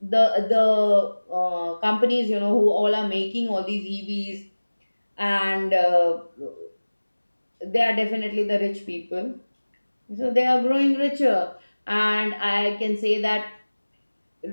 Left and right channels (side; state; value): both; inverted; correlation -1.00